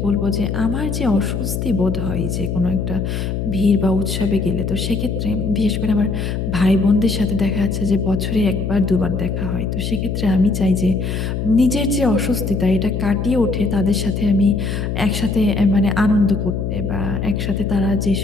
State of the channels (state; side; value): noise; left; hum, 2 dB below the sound